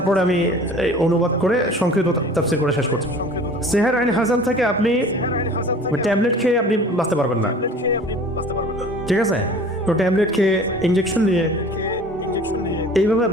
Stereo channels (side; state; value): both; normal; correlation 0.45